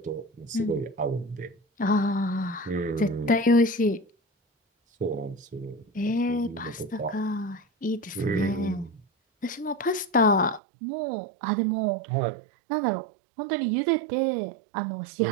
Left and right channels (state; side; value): drops out; left; at 10.6 s